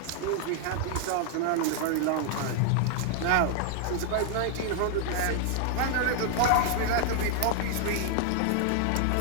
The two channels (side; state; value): both; different; correlation 0.00